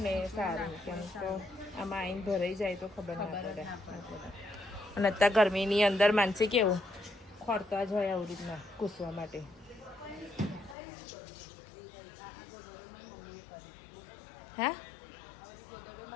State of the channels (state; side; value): drops out; right; at 10.8 s